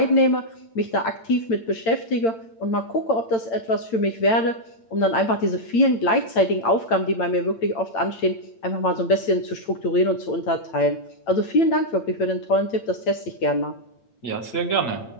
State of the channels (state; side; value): late; right; 8.9 ms